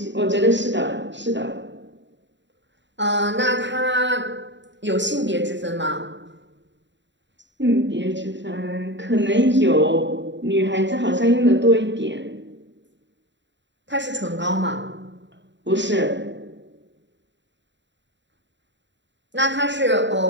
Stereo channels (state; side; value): late; left; 0.53 ms